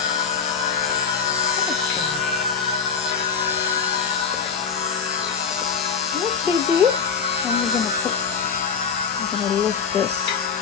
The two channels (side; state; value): right; quieter; 6.2 dB